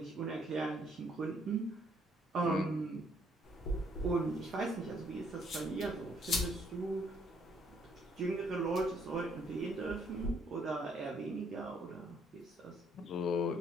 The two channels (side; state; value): both; normal; correlation 0.68